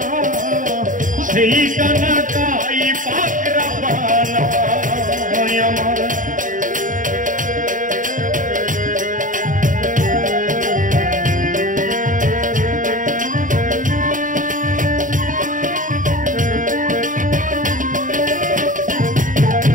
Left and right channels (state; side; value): late; left; 0.38 ms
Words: সেই কানা কাই পাকরা পানা আমার।